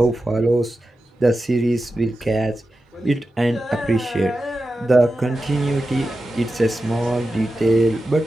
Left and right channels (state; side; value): normal; both; correlation 0.91